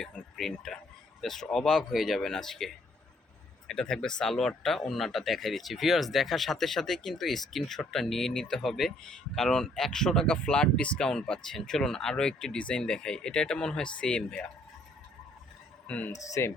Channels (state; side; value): normal; both; correlation 0.65